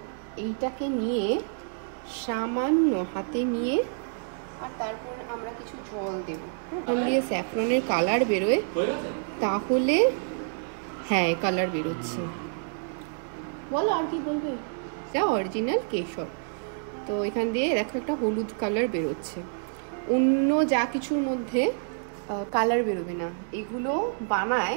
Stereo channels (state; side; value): silent; left; digital silence